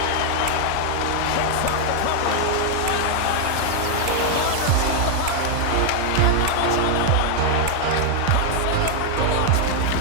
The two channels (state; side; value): different; both; correlation 0.00